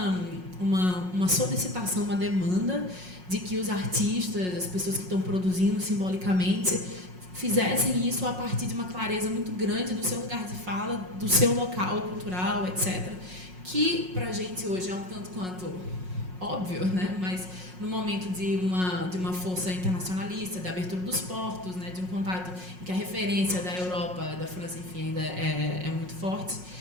uma solicitação, uma demanda de que os artistas, as pessoas que estão produzindo simbolicamente, fizessem isso a partir de uma clareza muito grande do seu lugar de fala, do seu local cultural, etc., que para a gente hoje é um tanto quanto óbvio, né? Mas no momento de uma força internacionalista, da abertura dos portos, né? De um contato em que a referência da Europa, da França, enfim, ainda é muito forte,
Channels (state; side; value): late; left; 5.5 ms